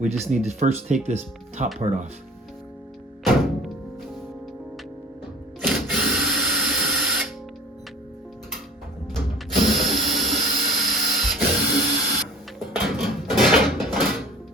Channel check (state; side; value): normal; both; correlation 0.44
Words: just need to first take this top part off.